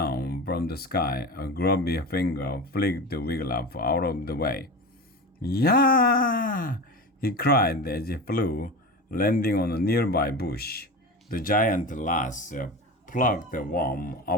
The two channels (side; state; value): both; normal; correlation 0.27